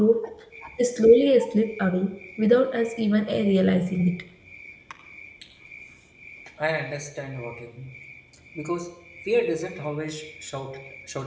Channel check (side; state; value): both; identical; correlation 1.00